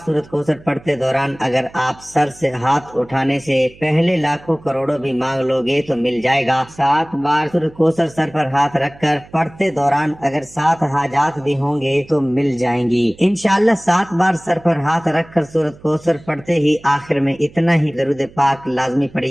سورۃ کوثر پڑھتے دوران اگر آپ سر سے ہاتھ اٹھانے سے پہلے لاکھوں کروڑوں بھی مانگ لو گے تو مل جائے گا۔ 7 بار سورۃ کوثر سر پر ہاتھ رکھ کر پڑھتے دوران اگر 7 حاجات بھی ہوں گے تو مل جائیں گی انشاءاللہ۔ 7 بار سر پر ہاتھ رکھ کر سورۃ کوثر پڑھتے ہی آخر میں اتنا ہی درود پاک لازمی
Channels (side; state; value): right; noise; hum, 23 dB below the sound